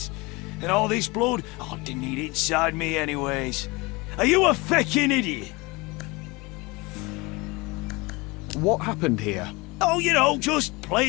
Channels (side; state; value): right; quieter; 24.7 dB